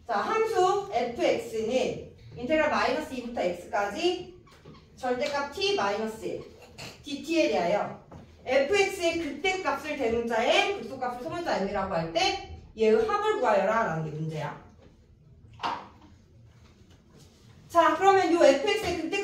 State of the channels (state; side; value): identical; both; correlation 1.00